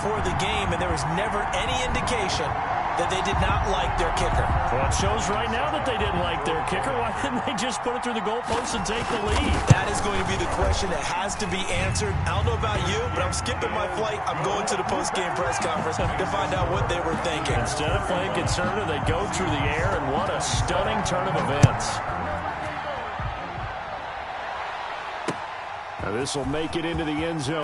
the game, and there was never any indication that they did not like their kicker. Well, it shows right now that they didn't like their kicker. Why didn't they just put it through the goalpost and take the lead? That is going to be the question that has to be answered. I don't know about you, but I'm skipping my flight. I'm going to the post-game press conference to find out what they were thinking. Instead of playing conservative, they go through the air, and what a stunning turn of events. Now this will make it into the end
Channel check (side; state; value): both; identical; correlation 1.00